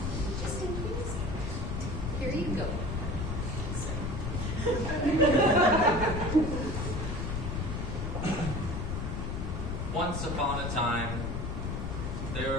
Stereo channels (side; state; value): left; noise; rumble, 2 dB below the sound